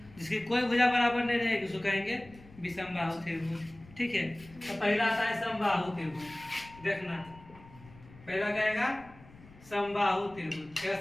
जिसकी कोई भुजा बराबर नहीं रहेगी उसको कहेंगे विषम बाहु त्रिभुज। ठीक है, तो पहला आता है समबाहु त्रिभुज। देखना पहला कहेगा समबाहु त्रिभुज। क्या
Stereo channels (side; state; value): left; noise; rumble, 22 dB below the sound